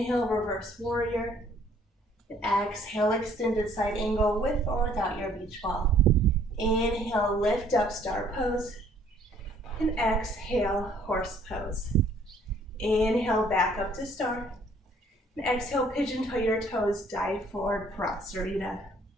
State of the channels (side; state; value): both; normal; correlation 0.60